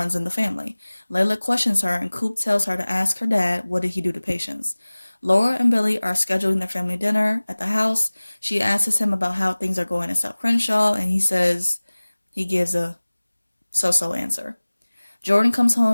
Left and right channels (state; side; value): inverted; both; correlation -1.00